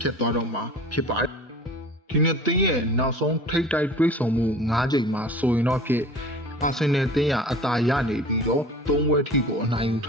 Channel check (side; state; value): both; normal; correlation 0.41